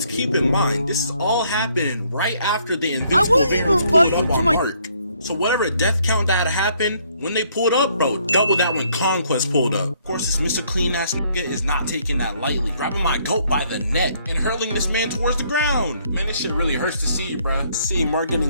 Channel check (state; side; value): inverted; both; correlation -0.67